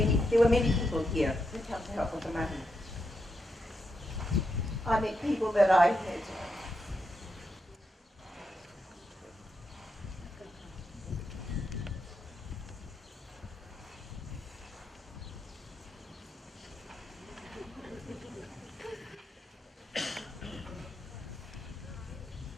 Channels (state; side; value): normal; both; correlation 0.84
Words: there were many people here who come to help with the mahi. I met people that I had